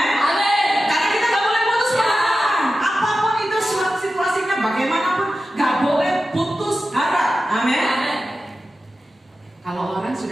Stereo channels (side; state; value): both; normal; correlation 0.93